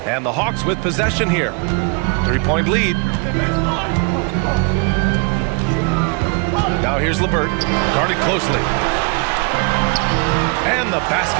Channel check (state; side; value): quieter; left; 34.7 dB